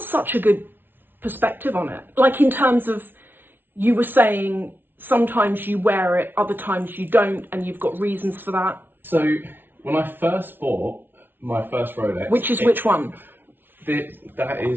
such a good perspective on it. Like, in terms of, you were saying sometimes you wear it, other times you don't, and you've got reasons for that. So when I first bought my first Rolex... Which one? That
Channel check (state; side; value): late; left; 0.10 ms